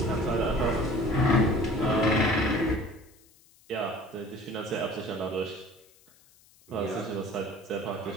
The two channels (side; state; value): left; noise; hiss, 29 dB below the sound